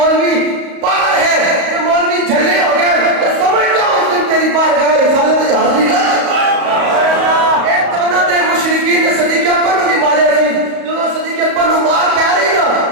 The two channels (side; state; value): left; late; 35 ms